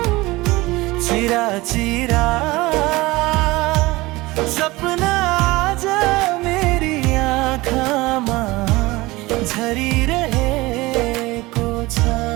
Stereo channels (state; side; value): quieter; left; 20.8 dB